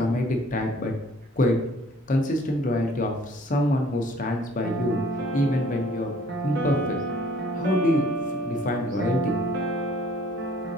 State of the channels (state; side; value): normal; both; correlation 0.56